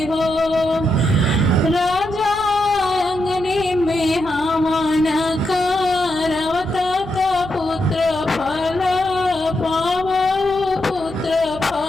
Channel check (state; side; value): noise; left; hum, 18 dB below the sound